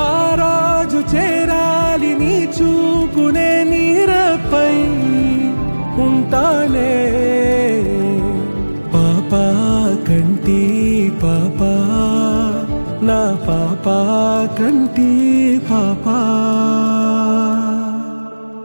ఆ రోజు చేరాలి నీ చూపునే నీరపై ఉంటానే పాపా కంటి పాపా నా పాపా కంటి పాపా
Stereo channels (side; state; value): both; inverted; correlation -1.00